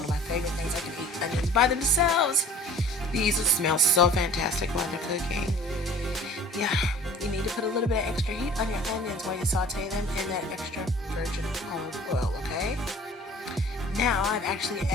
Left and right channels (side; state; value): both; normal; correlation 0.47